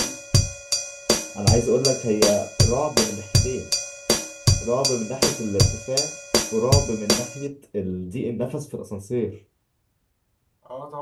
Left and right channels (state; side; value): identical; both; correlation 1.00